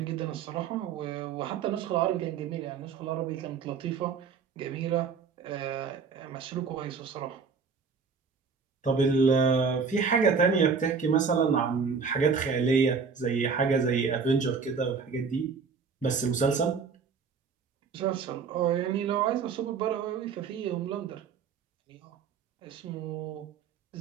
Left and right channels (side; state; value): left; quieter; 5.6 dB